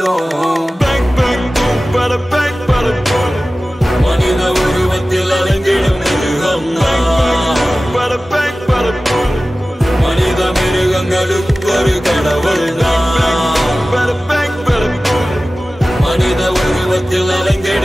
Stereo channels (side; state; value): both; normal; correlation 0.96